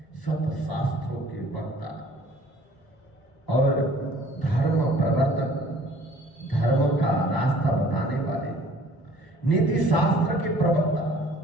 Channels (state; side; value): late; right; 1.0 ms